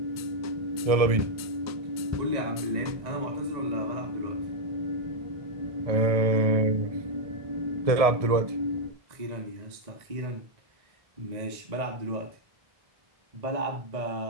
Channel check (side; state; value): left; late; 1.7 ms